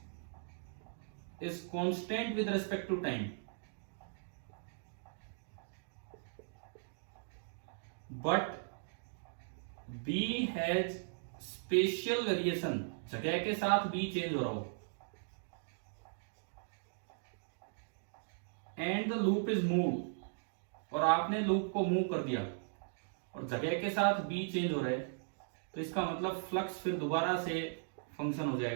is constant with respect to time, but B has spatial variation, जगह के साथ B change हो रहा हो, and the loop is moved, और आपने loop को move कर दिया और जगह के साथ B चेंज हो रहा है, तो इसका मतलब फ्लक्स फिर दोबारा से फंक्शन हो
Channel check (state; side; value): silent; left; digital silence